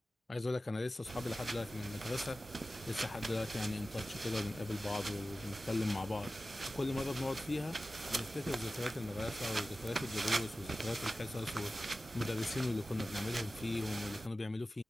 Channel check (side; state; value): both; normal; correlation 0.95